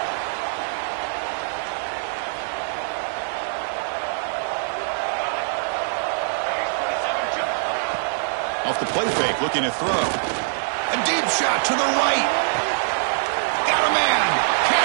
Off the play fake, looking to throw. A deep shot to the right. Got a man.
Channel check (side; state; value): left; silent; digital silence